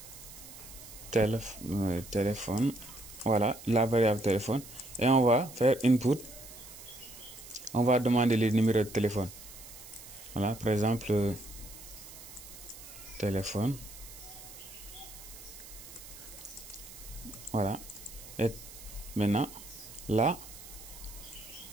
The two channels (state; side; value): noise; right; hiss, 16 dB below the sound